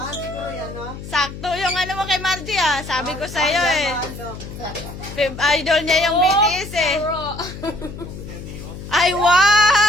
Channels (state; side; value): noise; left; hum, 11 dB below the sound